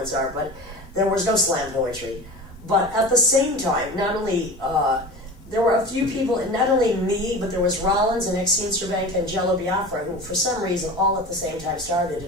art, but there was no slam poetry. But at the same time, not only there were a few people, and not only me, but there was Rollins and Exene Cervenka and Jello Biafra, who for some reason all at the same time started.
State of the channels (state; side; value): normal; both; correlation 0.33